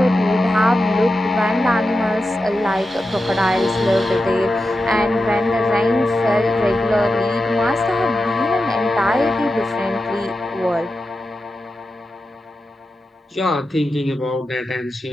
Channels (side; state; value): both; normal; correlation 0.91